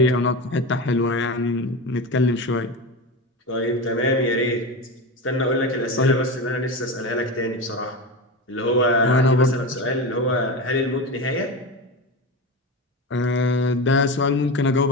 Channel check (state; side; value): normal; both; correlation 0.22